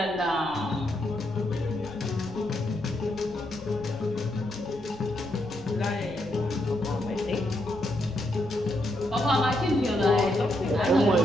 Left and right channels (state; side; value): noise; left; rumble, 20 dB below the sound